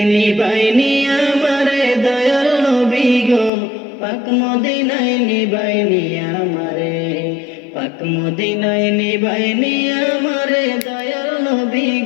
নিবাইনি আমারে দয়াল নবী গো পাক মদিনায় নিবাইনি আমারে পাক মদিনায় নিবাইনি আমারে দয়াল নবী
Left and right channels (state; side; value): drops out; right; at 3.5 s